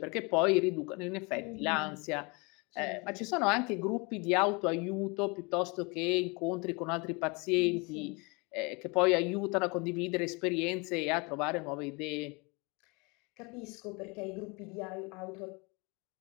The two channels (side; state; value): right; quieter; 29.0 dB